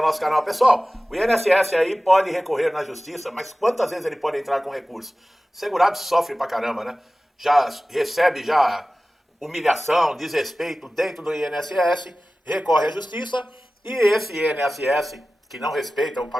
canal. Pessoal, o INSS aí pode recorrer na justiça, mas quantas vezes ele pode entrar com recurso? O segurado sofre pra caramba, né? Já recebe humilhação, desrespeito dentro do INSS, recorre à justiça e esse INSS, que não respeita o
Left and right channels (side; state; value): both; normal; correlation 0.96